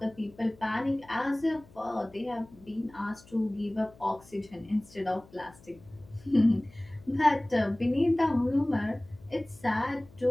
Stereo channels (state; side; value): noise; left; hum, 24 dB below the sound